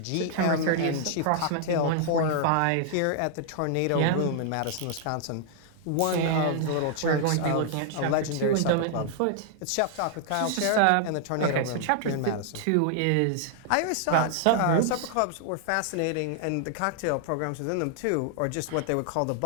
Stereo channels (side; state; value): both; different; correlation -0.01